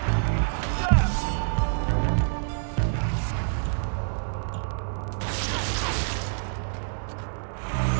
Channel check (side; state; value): left; silent; digital silence